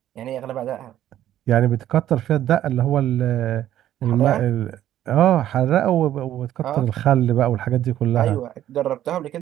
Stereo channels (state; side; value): quieter; left; 12.1 dB